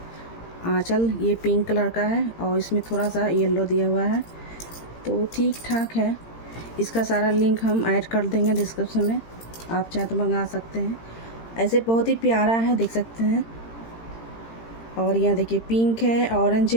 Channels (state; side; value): late; right; 18 ms